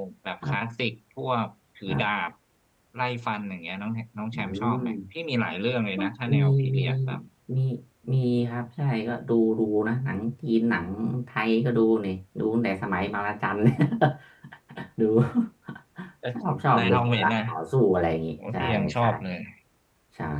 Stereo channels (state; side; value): identical; both; correlation 1.00